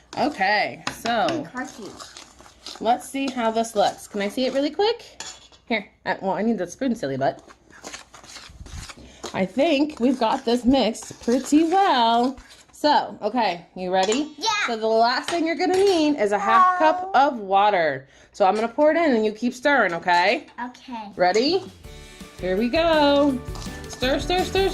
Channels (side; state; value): both; identical; correlation 1.00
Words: Okay, so... let's see how this looks. Can I see it really quick? Here. Well, I need the spoon, silly butt. I think we've got this mixed pretty well. So, okay, you ready? Yeah. So the last thing you're going to need is a half cup of water. So I'm going to pour it in and you keep stirring, okay? Okay. Ready? Here we go. Stir, stir, stir,